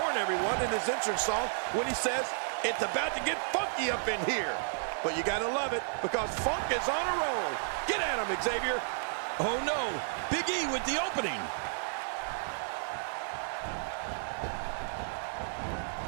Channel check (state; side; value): silent; left; 56 dB below the other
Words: everyone in his entrance song when he says, "It's about to get funky up in here." But you gotta love it, because Funk is on a roll. Get at him, Xavier. Oh no, Big E with the opening.